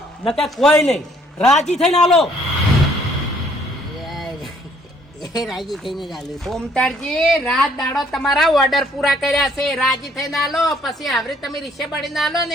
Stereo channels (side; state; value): both; normal; correlation 0.63